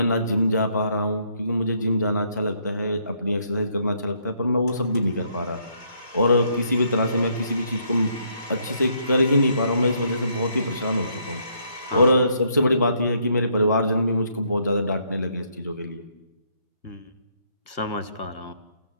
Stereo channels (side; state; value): both; inverted; correlation -0.71